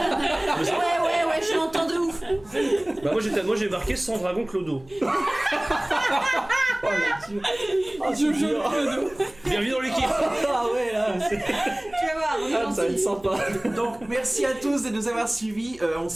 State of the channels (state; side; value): noise; right; hum, 25 dB below the sound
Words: Ouais, je l'entends de ouf. Bah, moi, j'ai marqué sans dragon Clodo. Oh la Dieu. Oh, Je joue Bienvenue dans l'équipe. Ah ouais là, c'est- Tu vas voir, on est ah, ça va être gentil. sympa. Donc merci à tous de nous avoir suivis. On